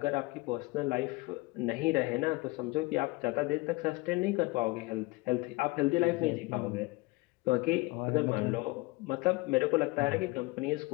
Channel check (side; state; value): right; quieter; 22.9 dB